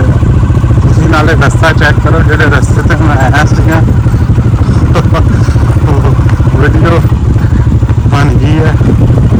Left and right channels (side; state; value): both; identical; correlation 1.00